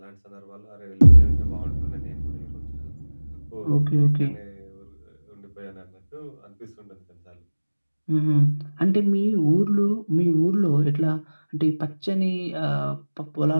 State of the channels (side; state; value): both; inverted; correlation -1.00